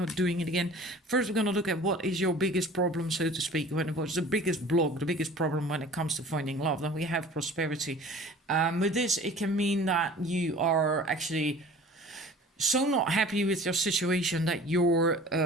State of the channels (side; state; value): both; normal; correlation 0.44